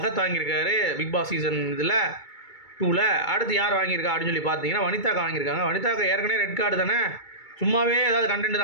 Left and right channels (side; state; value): right; late; 2.3 ms